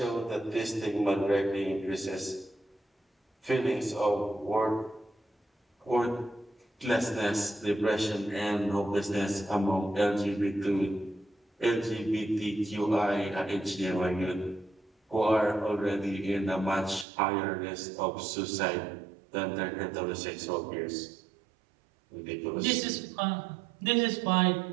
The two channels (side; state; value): left; drops out; at 17.1 s